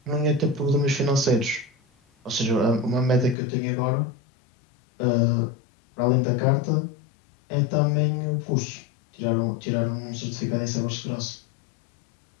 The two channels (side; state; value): right; drops out; at 3.4 s